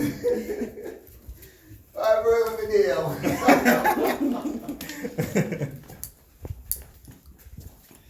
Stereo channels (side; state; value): both; identical; correlation 1.00